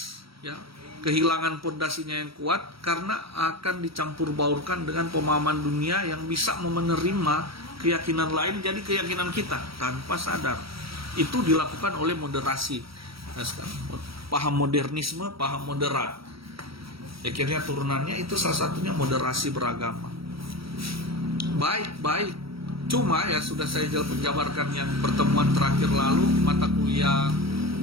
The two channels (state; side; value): late; left; 0.75 ms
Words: ya, kehilangan pondasinya yang kuat, karena akan dicampur baurkan dengan pemahaman dunia yang bisa menerima keyakinan lain jadi keyakinan kita tanpa sadar. Itu dilakukan oleh moderasi. Nah, sekarang paham modernisme, paham moderat. Akhirnya turunannya itu salah satunya moderasi beragama. Baik. Cuma ya sudah saya jabarkan yang pertemuan terakhir lalu, mata kuliah